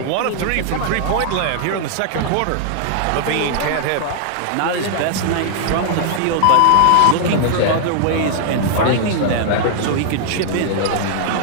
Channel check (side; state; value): both; different; correlation -0.01